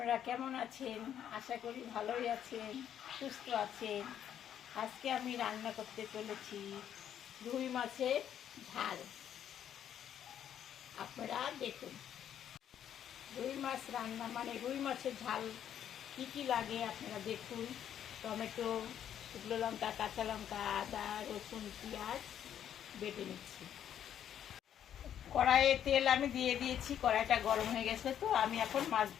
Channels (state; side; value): quieter; right; 9.8 dB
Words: কেমন আছেন? আশা করি ভালোই আছেন, সুস্থ আছেন। আজকে আমি রান্না করতে চলেছি রুই মাছের ঝাল। আপনারা দেখুন, রুই মাছ রান্না মানে রুই মাছের ঝাল কী কী লাগে আপনারা দেখুন। টমেটো, শুকনো লঙ্কা, কাঁচা লঙ্কা, আদা, রসুন, পেঁয়াজ বেটে নিচ্ছি। কড়াইয়ে তেল আমি দিয়ে দিয়েছি, কড়াইটা গরম হয়ে গেছে, তো আমি এখন